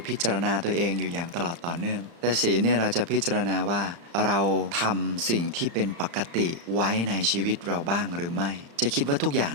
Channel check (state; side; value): late; left; 35 ms